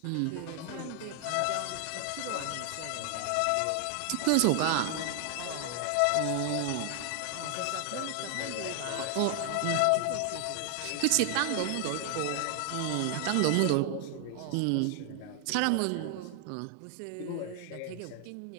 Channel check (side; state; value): both; different; correlation 0.00